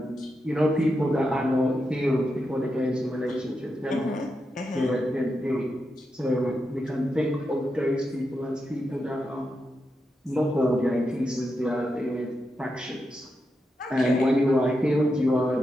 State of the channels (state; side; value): normal; both; correlation 0.86